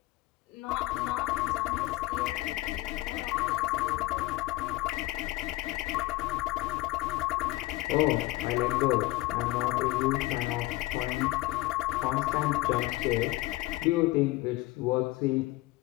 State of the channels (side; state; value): right; quieter; 19.1 dB